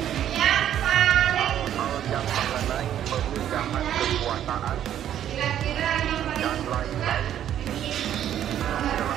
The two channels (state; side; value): quieter; left; 10.8 dB